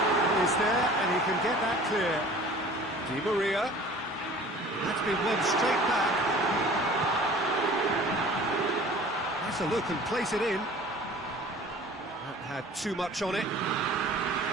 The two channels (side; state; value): both; normal; correlation 0.46